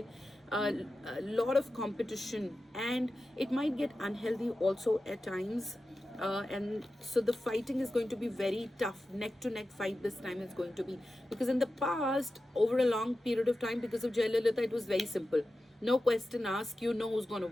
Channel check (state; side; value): normal; both; correlation 0.93